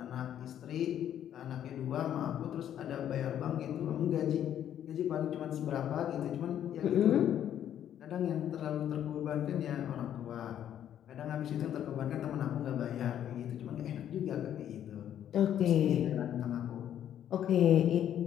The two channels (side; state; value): right; quieter; 10.4 dB